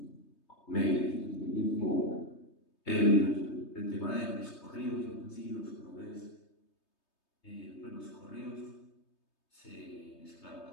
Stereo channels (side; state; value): right; late; 3.2 ms